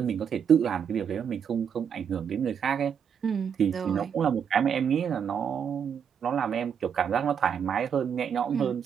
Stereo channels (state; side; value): quieter; left; 7.7 dB